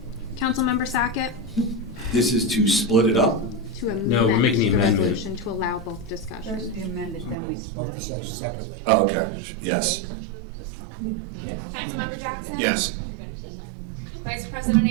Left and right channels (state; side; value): drops out; left; at 7.4 s